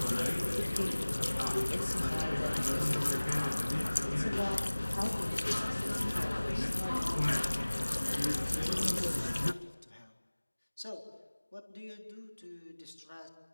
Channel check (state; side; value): inverted; both; correlation -1.00